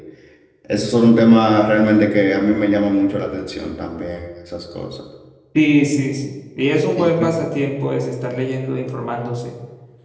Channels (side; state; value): both; identical; correlation 1.00